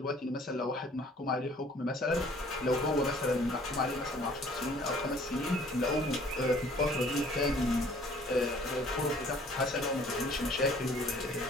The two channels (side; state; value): both; normal; correlation 0.55